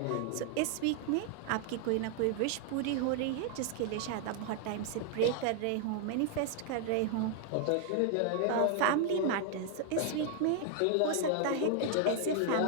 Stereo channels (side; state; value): both; different; correlation 0.00